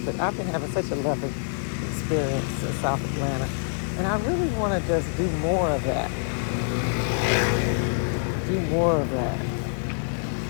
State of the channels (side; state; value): right; silent; digital silence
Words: But I've been having such a lovely experience in South Atlanta. And I really want to just do more of that. Do more of that.